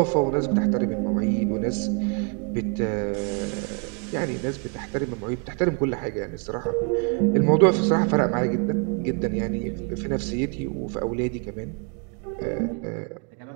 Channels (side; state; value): left; quieter; 35.6 dB